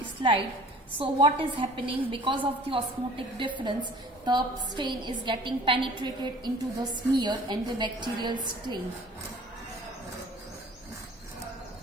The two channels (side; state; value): both; normal; correlation 0.49